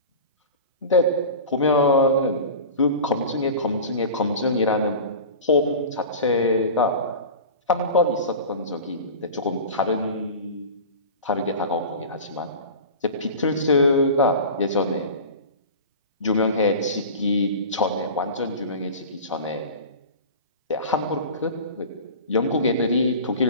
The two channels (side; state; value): both; inverted; correlation -0.34